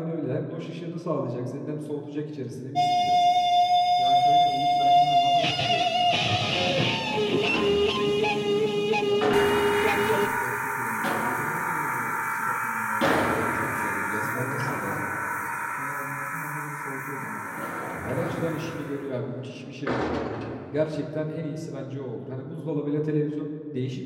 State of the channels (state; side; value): identical; both; correlation 1.00